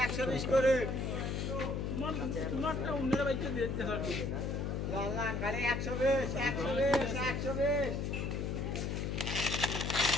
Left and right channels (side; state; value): left; noise; hum, 1 dB below the sound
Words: করে তোমারটা অন্যরা বাইতে দিতে হবে লাল কালে 120 120 120